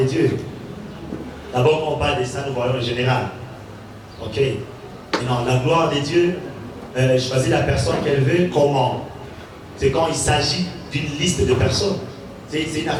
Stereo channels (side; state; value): both; identical; correlation 1.00